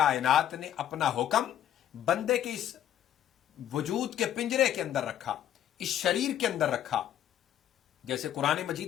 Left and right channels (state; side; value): quieter; right; 11.0 dB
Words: نے اپنا حکم بندے کے اس وجود کے پنجرے کے اندر رکھا، اس شریر کے اندر رکھا۔ جیسے قرآن